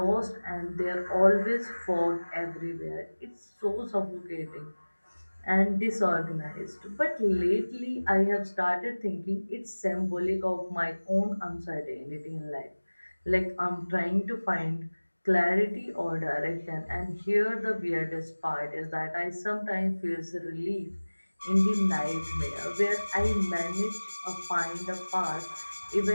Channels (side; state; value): both; inverted; correlation -1.00